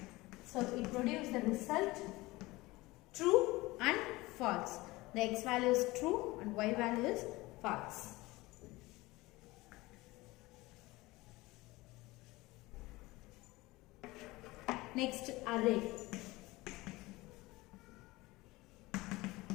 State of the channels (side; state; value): right; quieter; 20.7 dB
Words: So it produces the result true and false. The x value is true and y value is false. Next, array.